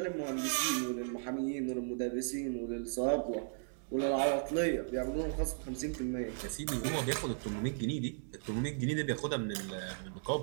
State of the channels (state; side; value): silent; left; digital silence